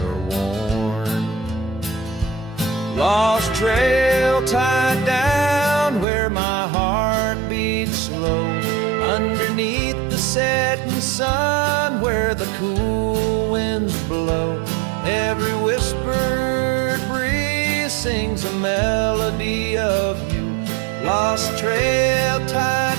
worn. Lost trail tied down where my heart beats slow, underneath the setting sun where the cool winds blow. Every whispered breeze sings a melody of you. Lost trail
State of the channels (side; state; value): left; drops out; at 6.1 s